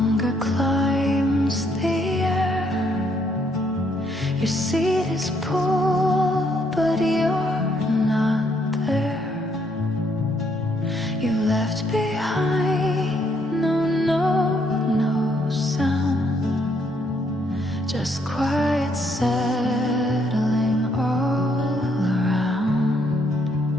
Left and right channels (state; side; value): normal; both; correlation 0.71